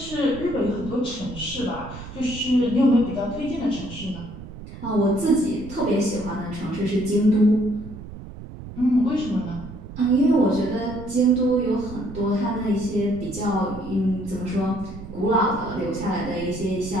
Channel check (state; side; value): noise; right; rumble, 13 dB below the sound